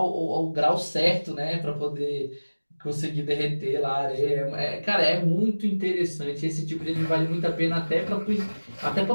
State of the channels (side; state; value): both; inverted; correlation -1.00